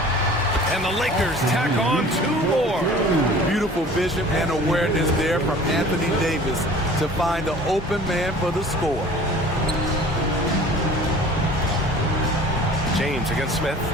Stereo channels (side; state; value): both; normal; correlation 0.46